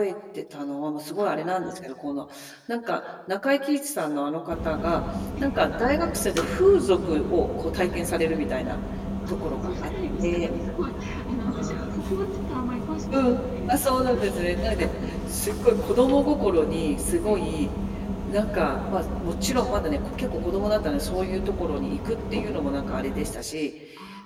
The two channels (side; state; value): both; identical; correlation 1.00